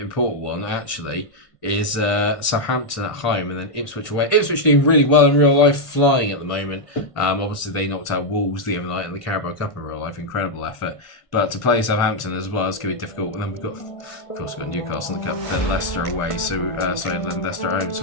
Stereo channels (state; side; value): late; right; 1.5 ms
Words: one actually is Southampton at home and then Ipswich away. Ipswich doing really well in real life, flying at the moment. Obviously, they knocked out Wolves the other night in the Carabao Cup in real life. Incredible effort. But to play Southampton as well is going to be difficult. And then we've got, of course, we've got Newcastle in the Cup, then Leicester away. Then Leicester at home. So